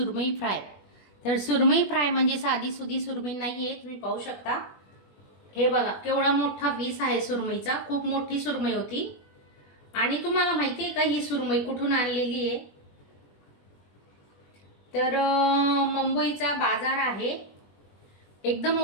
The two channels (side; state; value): right; late; 21 ms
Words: फ्राय. तर सुरमई फ्राय म्हणजे साधी सुधी सुरमई नाहीये, तुम्ही पाहू शकता. हे बघा केवढा मोठा पीस आहे सुरमईचा, खूप मोठी सुरमई होती. आणि तुम्हाला माहिती आहे का ही सुरमई कुठून आणलेली आहे? तर मुंबईचा बाजार आहे, एकदम